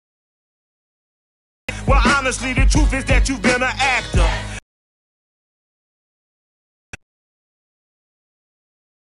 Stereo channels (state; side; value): identical; both; correlation 1.00